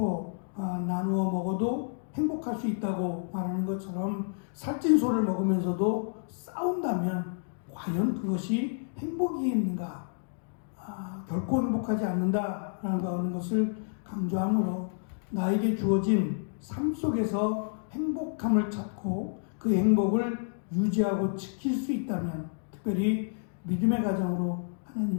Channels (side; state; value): right; silent; digital silence